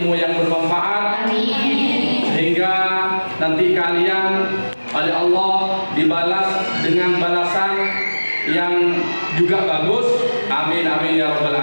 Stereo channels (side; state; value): both; inverted; correlation -1.00